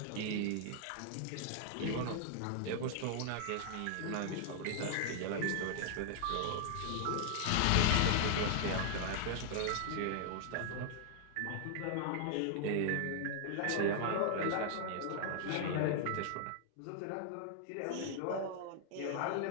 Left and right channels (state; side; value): different; both; correlation 0.00